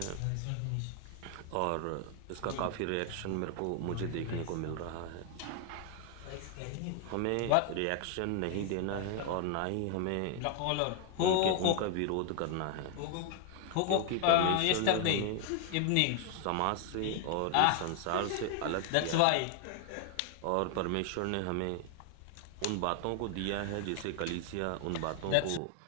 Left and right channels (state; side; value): different; both; correlation 0.00